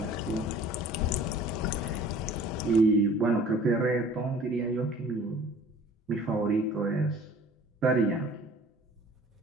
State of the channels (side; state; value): both; normal; correlation 0.49